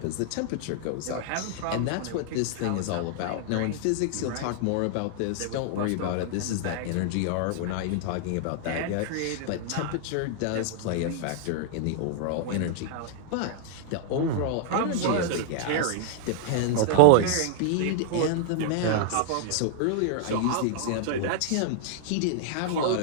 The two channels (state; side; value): different; both; correlation -0.01